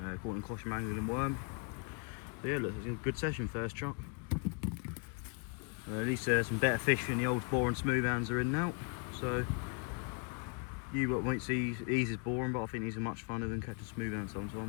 caught in caution angling and worm. But yeah, look, it's a good session, first chuck. At least some better fish than the old bore and smooth hands are in now. So you won't see these as boring, but I think these are much funner than catching smooth hands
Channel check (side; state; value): right; quieter; 37.0 dB